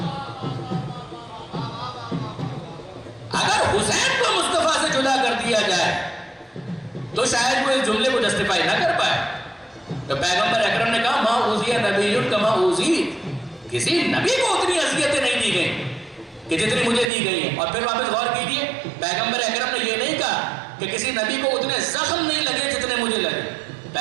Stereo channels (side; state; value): left; drops out; at 17.1 s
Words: اگر حسین کو مصطفیٰ سے جدا کر دیا جائے تو شاید وہ اس جملے کو جسٹیفائی نہ کر پائے. تو پیغمبر اکرم نے کہا ما اوذی نبی کما اوذیت, کسی نبی کو اتنی اذیتیں نہیں دی گئیں کہ جتنی مجھے دی گئی ہیں. اور پھر واپس غور کیجئے, پیغمبر اکرم نے یہ نہیں کہا کہ کسی نبی کو اتنے زخم نہیں لگے جتنے مجھے لگے.